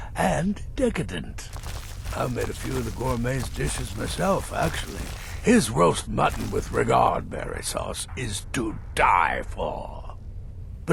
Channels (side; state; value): both; identical; correlation 1.00